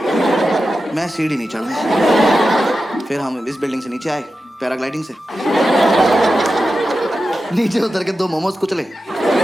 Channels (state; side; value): normal; both; correlation 0.91